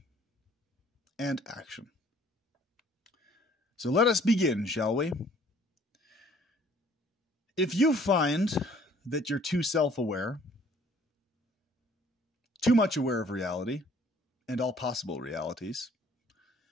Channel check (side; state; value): both; normal; correlation 0.58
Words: and action. So let us begin, shall we? If you find that you're too self-aware, too much aware of reality and all possible realities,